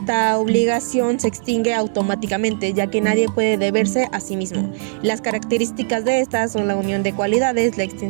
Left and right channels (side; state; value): left; silent; digital silence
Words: obligación se extingue automáticamente, ya que nadie puede deberse a sí mismo. Las características de estas son la unión de cualidades, la